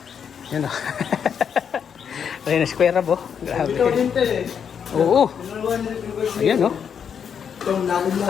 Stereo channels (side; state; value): right; quieter; 7.5 dB